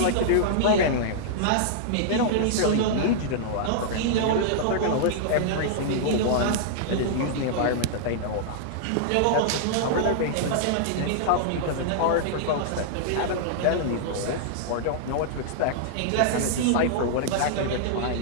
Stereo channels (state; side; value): different; both; correlation -0.01